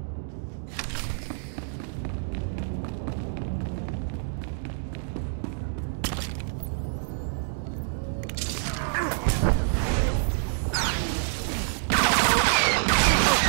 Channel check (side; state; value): left; silent; digital silence